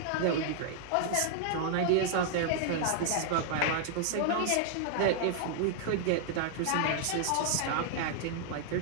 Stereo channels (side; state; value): both; different; correlation -0.01